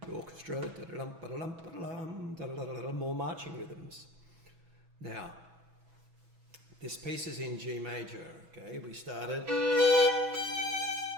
The orchestra, more marching rhythms. Now, this piece is in G major, okay? We started.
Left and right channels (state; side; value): late; left; 6.1 ms